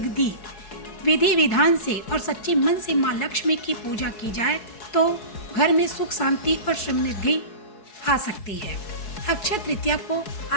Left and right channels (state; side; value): late; right; 4.7 ms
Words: विधि विधान से और सच्चे मन से माँ लक्ष्मी की पूजा की जाए तो घर में सुख शांति और समृद्धि आ सकती है। अक्षय तृतीया को